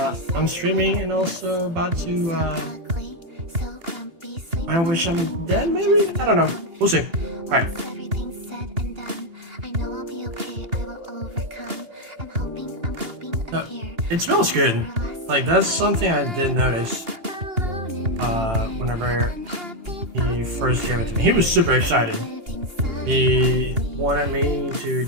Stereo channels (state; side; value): late; left; 2.8 ms